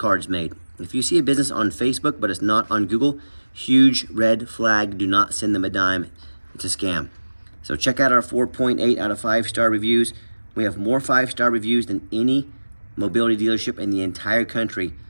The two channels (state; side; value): inverted; both; correlation -1.00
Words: made. If you see a business on Facebook but it's not on Google, huge red flag. Do not send them a dime. It's a scam. So check out our 4.8 out of 5-star reviews. We have more 5-star reviews than any mobility dealership in the entire country.